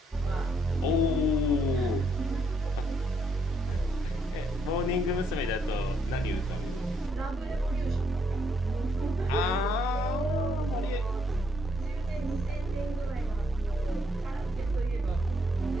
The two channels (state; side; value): normal; both; correlation 0.72